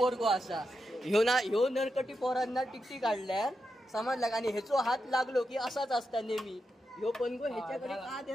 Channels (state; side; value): normal; both; correlation 0.87